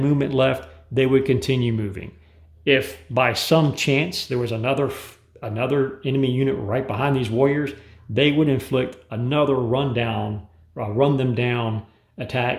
left, they would continue moving. If by some chance there was another enemy unit right behind these warriors, they would inflict another run them down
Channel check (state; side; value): identical; both; correlation 1.00